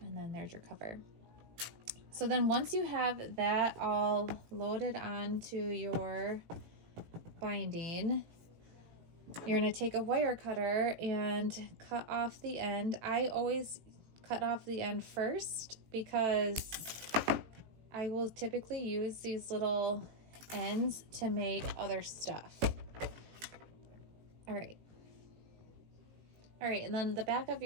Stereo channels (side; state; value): left; late; 18 ms